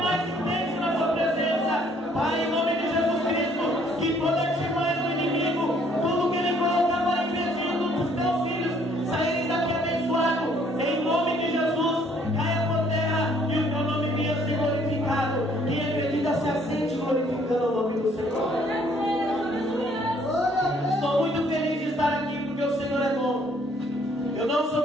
intenso na tua presença. Pai, em nome de Jesus Cristo, que toda artimanha do inimigo, tudo que ele coloca para impedir dos teus filhos saírem daqui abençoado, em nome de Jesus, caia por terra e o teu nome venha ser glorificado. Quem acredita se assente glorificando o nome do Senhor. Estou muito feliz de estar aqui porque o Senhor é bom. Eu não sou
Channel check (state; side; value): normal; both; correlation 0.63